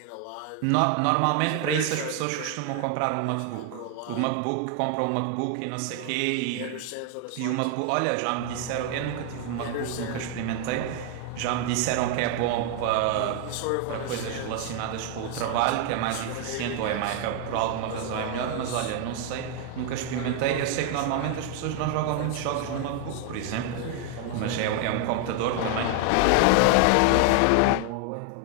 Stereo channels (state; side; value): different; both; correlation 0.00